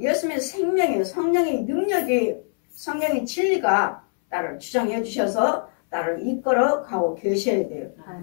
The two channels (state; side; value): silent; right; 63 dB below the other